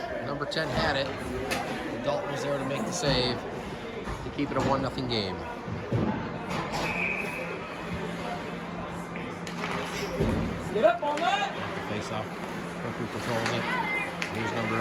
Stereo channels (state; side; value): identical; both; correlation 1.00